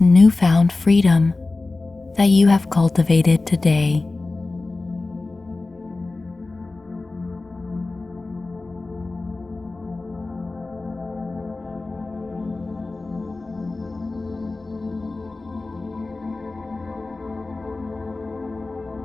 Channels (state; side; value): quieter; right; 3.4 dB